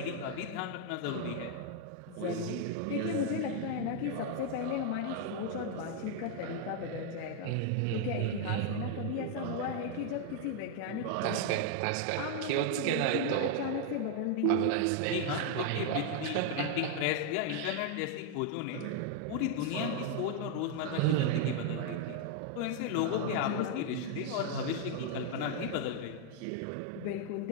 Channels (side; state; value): both; different; correlation 0.00